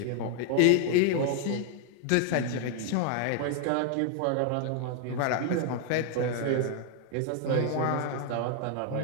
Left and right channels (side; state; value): both; different; correlation 0.00